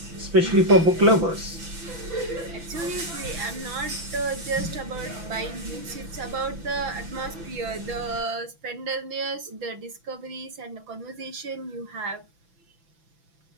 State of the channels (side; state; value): left; late; 6.0 ms